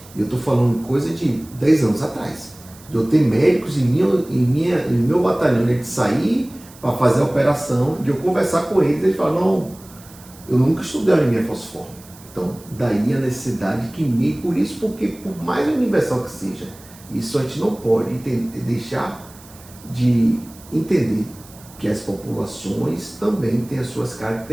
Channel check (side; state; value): right; noise; hiss, 22 dB below the sound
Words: E eu estou falando coisa de 10 anos atrás. De eu ter médicos em meu batalhão, de sair para fazer a operação, de eu conversar com eles, eles falam, não, eu nunca estudei anemia falciforme. Então, daí a necessidade que por isso, porque por mais universal que seja, isso a gente não pode deixar de entender que as populações também têm as suas